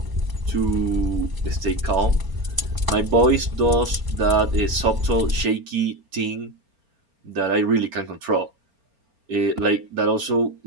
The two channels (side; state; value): left; late; 4.4 ms